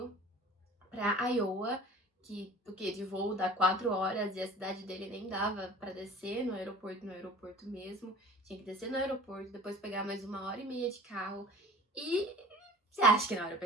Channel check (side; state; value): both; normal; correlation 0.43